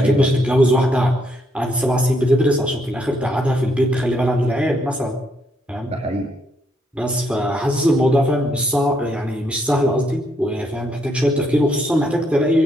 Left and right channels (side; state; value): both; normal; correlation 0.74